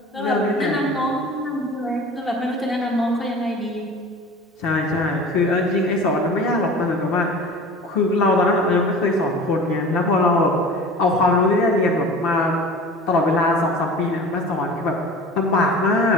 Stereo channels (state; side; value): normal; both; correlation 0.39